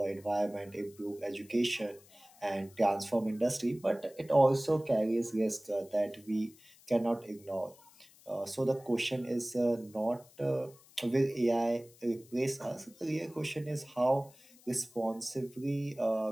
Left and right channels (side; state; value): left; noise; hiss, 25 dB below the sound